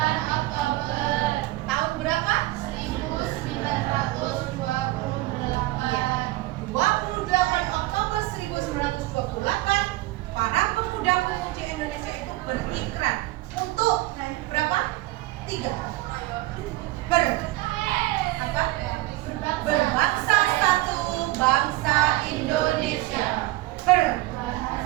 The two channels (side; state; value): left; quieter; 18.8 dB